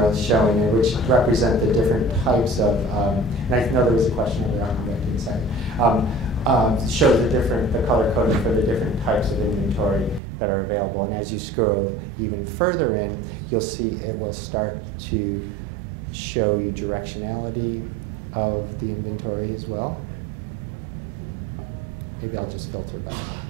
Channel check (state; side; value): drops out; left; at 10.2 s